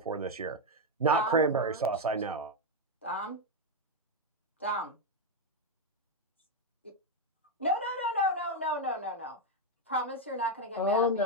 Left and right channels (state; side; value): normal; both; correlation 0.03